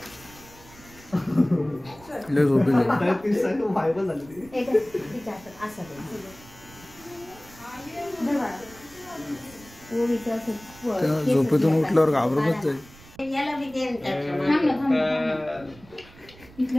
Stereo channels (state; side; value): noise; right; rumble, 22 dB below the sound